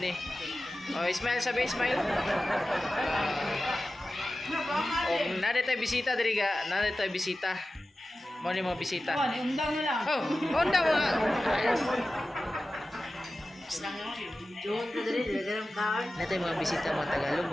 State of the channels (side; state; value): both; normal; correlation 0.95